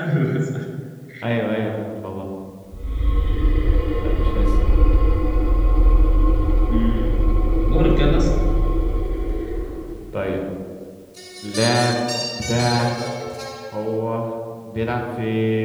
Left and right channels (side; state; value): both; identical; correlation 1.00